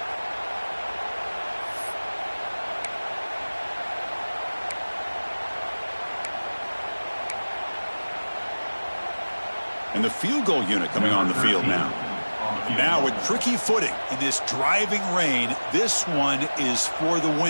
And the field goal unit coming on the field now. Now with tricky footing in this driving rain, this one is for the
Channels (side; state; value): both; inverted; correlation -1.00